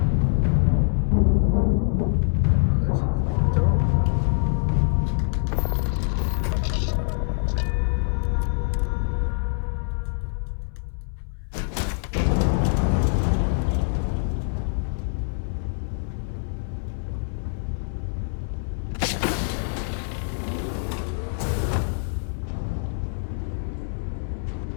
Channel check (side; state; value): right; silent; 62 dB below the other